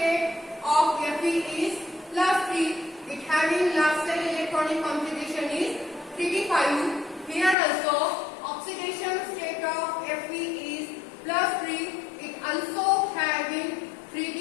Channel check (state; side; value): drops out; right; at 7.6 s